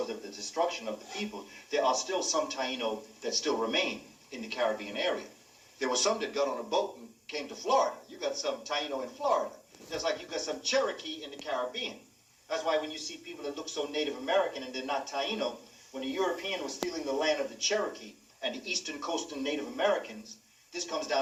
of the destruction of the people, there are still some Taino that still remain in the Caribbean area. There were some that got on a boat and came to Florida. You got some Taino in Florida. Just like you got some Cherokee in the Caribbean. That's why when you see people that look so Native American and they're not Taino, when the European was stealing the land of the Cherokee and the eastern coastal Native Americans, this comes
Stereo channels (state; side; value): identical; both; correlation 1.00